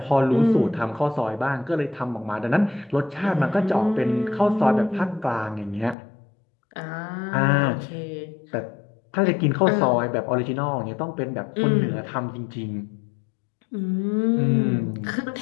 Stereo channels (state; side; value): drops out; right; at 6.0 s